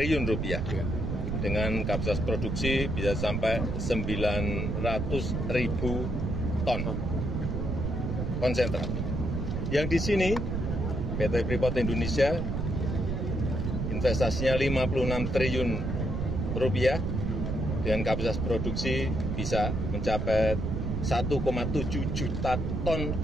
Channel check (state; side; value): noise; right; rumble, 1 dB below the sound